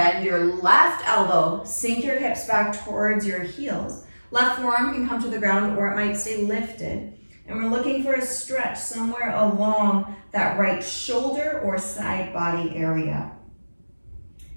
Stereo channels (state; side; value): inverted; both; correlation -1.00